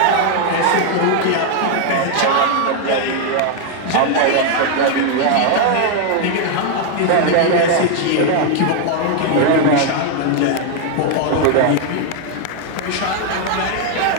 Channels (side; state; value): both; different; correlation 0.00